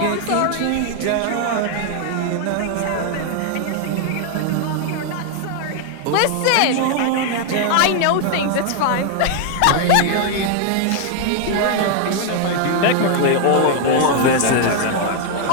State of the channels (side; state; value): both; different; correlation 0.00